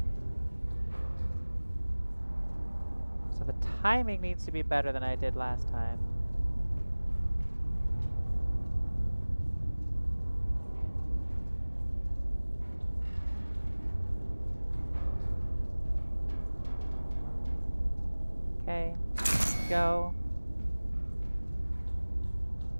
So the timing needs to be better than I did last time. Okay, go.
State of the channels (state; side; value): inverted; both; correlation -1.00